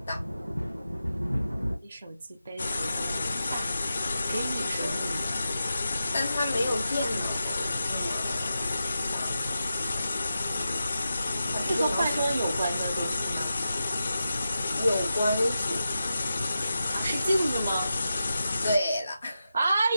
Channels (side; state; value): both; inverted; correlation -0.90